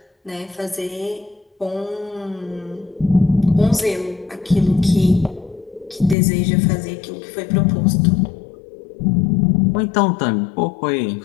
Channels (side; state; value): right; drops out; at 6.2 s